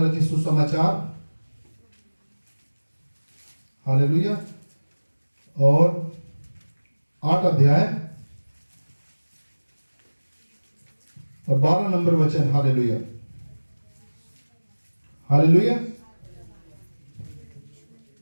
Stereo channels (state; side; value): inverted; both; correlation -1.00